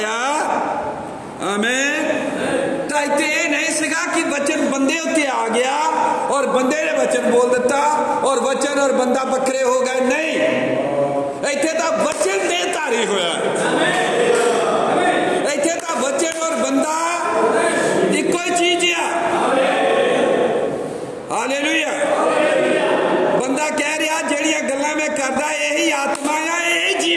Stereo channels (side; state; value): both; identical; correlation 1.00